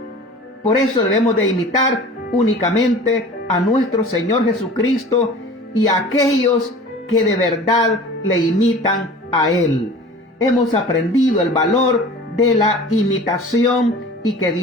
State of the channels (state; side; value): normal; both; correlation 0.41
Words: Por eso debemos de imitar únicamente a nuestro Señor Jesucristo y a aquellos que de verdad le imitan a Él. Hemos aprendido el valor de la imitación y que